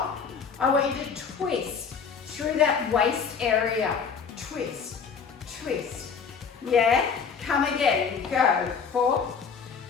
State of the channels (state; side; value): quieter; right; 6.1 dB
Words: I want you to twist through that waist area. Twist, twist. Yeah? Come again. Go. 4,